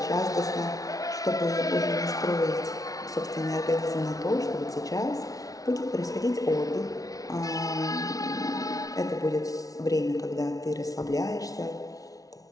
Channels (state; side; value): late; right; 0.18 ms